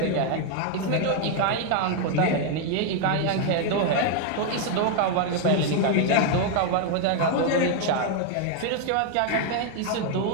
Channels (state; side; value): different; both; correlation 0.00